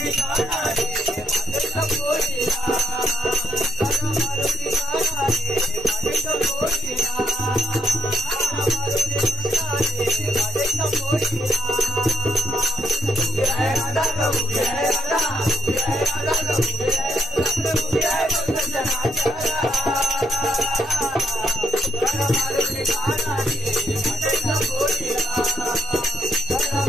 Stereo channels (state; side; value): normal; both; correlation 0.75